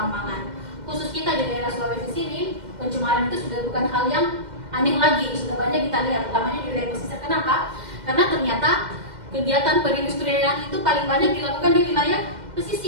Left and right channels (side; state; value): left; late; 2.1 ms